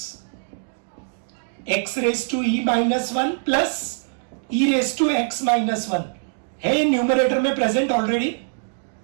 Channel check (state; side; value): silent; left; digital silence